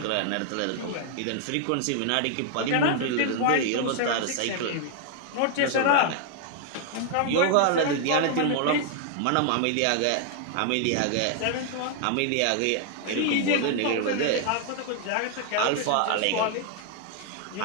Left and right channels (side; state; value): both; different; correlation 0.00